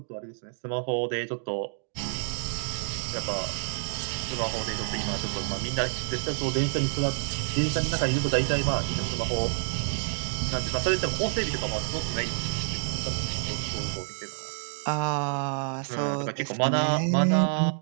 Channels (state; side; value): silent; left; digital silence